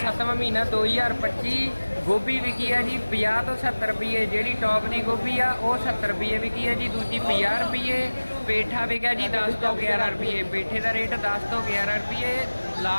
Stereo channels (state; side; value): inverted; both; correlation -1.00